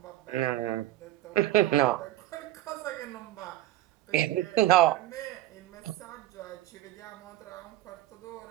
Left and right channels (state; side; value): quieter; left; 15.1 dB